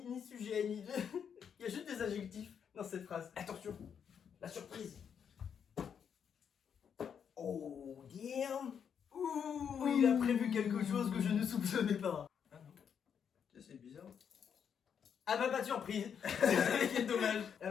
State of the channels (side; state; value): right; quieter; 7.6 dB